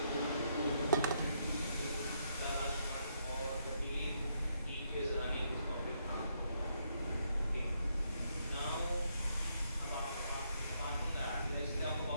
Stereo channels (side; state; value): both; inverted; correlation -0.77